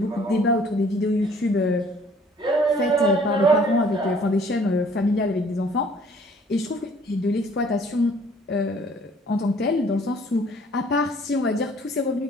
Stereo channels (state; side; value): normal; both; correlation 0.57